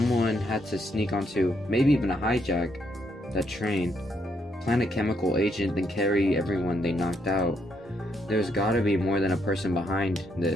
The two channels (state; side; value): normal; both; correlation 0.75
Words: had to sneak onto, maybe even a hijack, that train, plant a chemical agent, then carry everyone they knocked out. There's gotta be more than a person behind